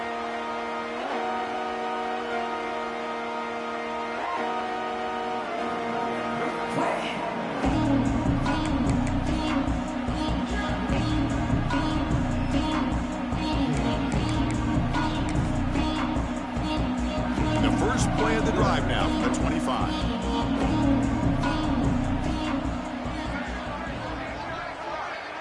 The first play of the drive now from the 25.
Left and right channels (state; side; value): identical; both; correlation 1.00